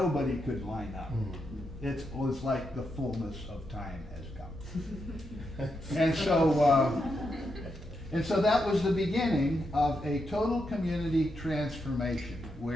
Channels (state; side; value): normal; both; correlation 0.83